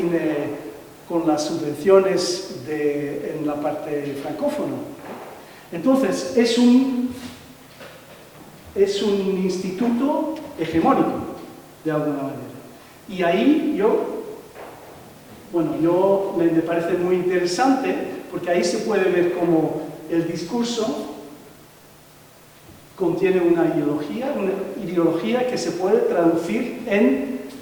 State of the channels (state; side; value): identical; both; correlation 1.00